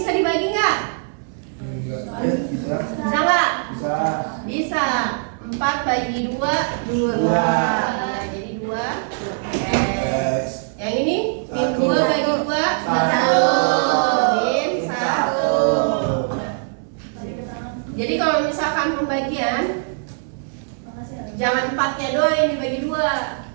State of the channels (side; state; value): left; silent; digital silence